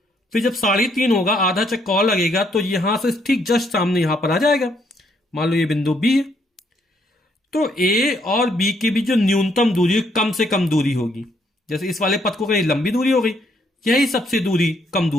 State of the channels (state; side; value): normal; both; correlation 0.71